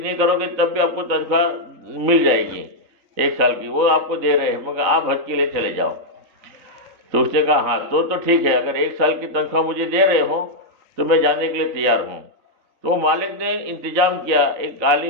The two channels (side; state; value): left; late; 3.9 ms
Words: کرو گے تب بھی آپ کو تنخواہ مل جائے گی 1 سال کی، وہ آپ کو دے رہے ہیں، مگر آپ حج کے لیے چلے جاؤ. تو اس نے کہا ہاں تو ٹھیک ہے، اگر 1 سال کی تنخواہ مجھے دے رہے ہو تو میں جانے کے لیے تیار ہوں. تو مالک نے انتظام کیا، ایک